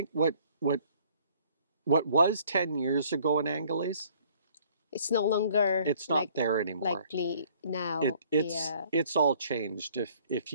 what was 10 years ago in Angeles, It's no longer it's not there anymore. likely now. Yeah. It's all changed. If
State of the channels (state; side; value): inverted; both; correlation -0.59